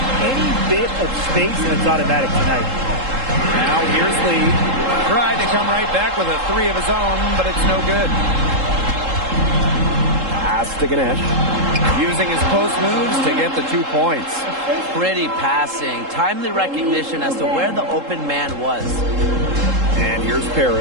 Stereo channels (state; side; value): late; left; 3.7 ms